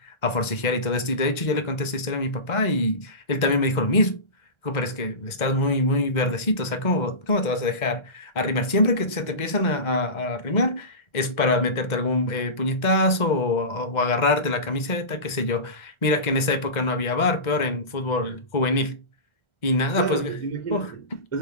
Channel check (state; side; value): late; right; 1.4 ms